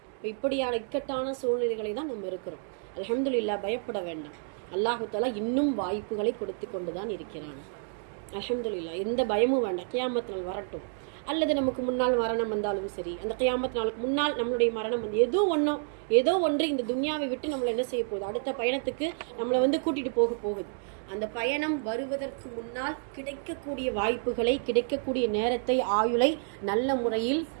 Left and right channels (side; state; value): left; silent; 58 dB below the other